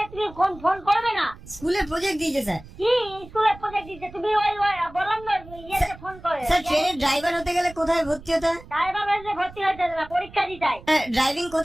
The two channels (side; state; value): right; noise; rumble, 19 dB below the sound